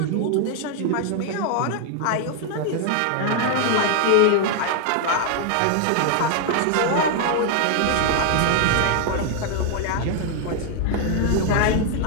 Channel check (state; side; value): different; both; correlation 0.00